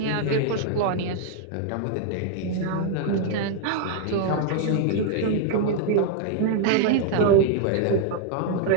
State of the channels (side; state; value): both; different; correlation 0.00